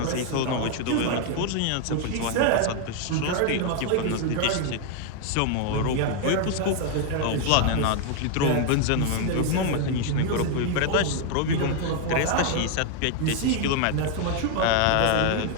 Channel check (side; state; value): both; different; correlation 0.00